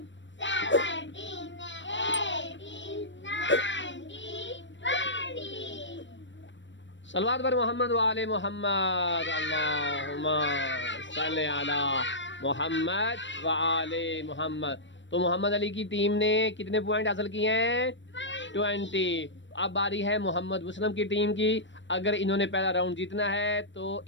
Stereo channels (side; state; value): right; late; 0.53 ms